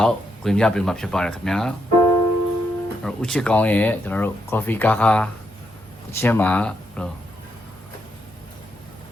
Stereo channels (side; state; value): both; normal; correlation 0.79